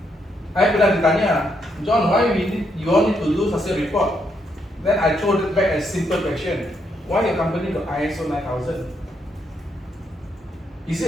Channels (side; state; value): both; normal; correlation 0.77